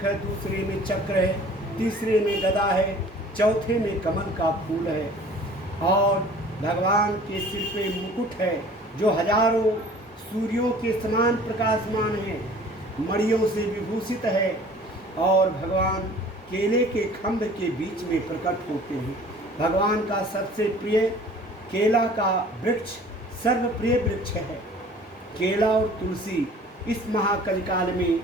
है, दूसरे में चक्र है, तीसरे में गदा है, चौथे में कमल का फूल है, और भगवान के सिर पे मुकुट है जो हजारों सूर्यों के समान प्रकाशमान है, मणियों से विभूषित है, और भगवान केले के खंभ के बीच में प्रकट होते हैं। भगवान का सबसे प्रिय केला का वृक्ष सर्वप्रिय वृक्ष है। केला और तुलसी इस महाकलिकाल में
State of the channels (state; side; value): normal; both; correlation 0.48